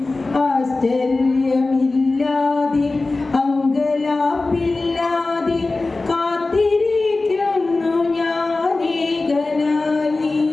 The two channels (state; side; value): quieter; right; 3.4 dB